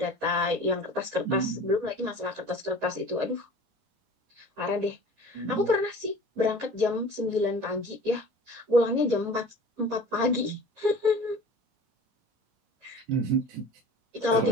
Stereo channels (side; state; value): left; late; 13 ms